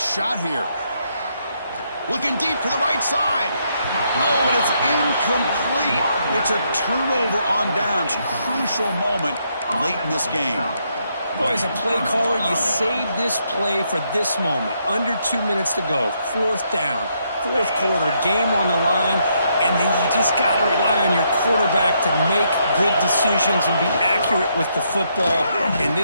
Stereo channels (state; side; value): inverted; both; correlation -0.75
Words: shot here. Looking deep to the right side. Oh, and it's incomplete. It's a turnover on downs. Crucial moment late in this game. Boy, as a play caller, you save this play for this moment. Under 2 minutes to go. Fourth down. Fourth quarter. Game on the line. And then you just got to rely on your quarterback to make good decisions and be accurate with the football. In